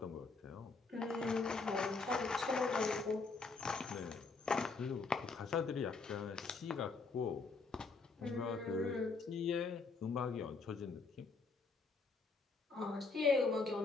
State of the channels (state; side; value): quieter; right; 4.2 dB